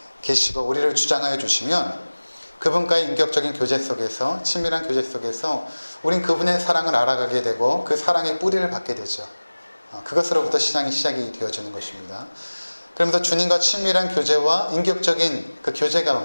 계시고 우리를 주장하여 주시면 그분과의 인격적인 교제 속에서, 친밀한 교제 속에서 우린 그분의 사랑을 알아가게 되고 그 사랑의 뿌리를 받게 되죠. 그것으로부터 신앙이 시작이 되어지는 것입니다. 그러면서 주님과 친밀한 교제와 인격적인 그 교제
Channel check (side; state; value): both; inverted; correlation -1.00